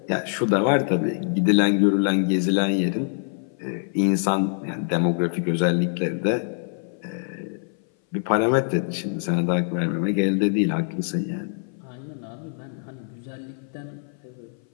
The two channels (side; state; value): right; silent; 58 dB below the other